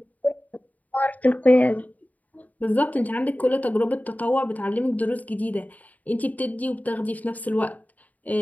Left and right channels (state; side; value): late; right; 0.075 ms